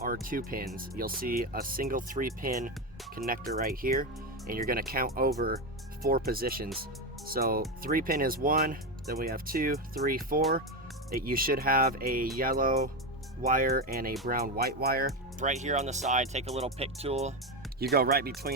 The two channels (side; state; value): both; normal; correlation 0.13